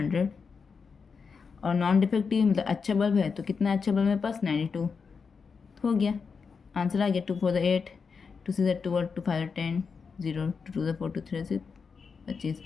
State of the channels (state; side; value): quieter; right; 5.4 dB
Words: और नॉन डिफेक्टिव मतलब अच्छा बल्ब है, तो कितना अच्छा बल्ब मेरे पास 92 हो गया, आंसर आ गया। 2 4 8, 2 6 12, 2 5 10, 0 2 4 2 3 6 25,